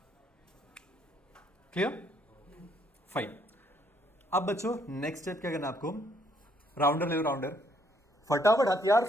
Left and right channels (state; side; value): normal; both; correlation 0.69